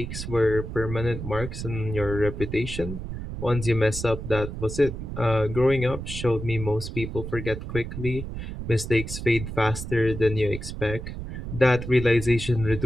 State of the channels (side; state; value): right; noise; rumble, 7 dB below the sound